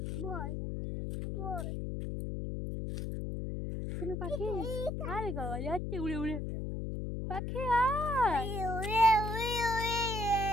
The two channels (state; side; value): noise; left; hum, 3 dB below the sound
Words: শুনো পাখি আরে বাবা যাচ্ছে উড়ে উড়ে পাখি আয়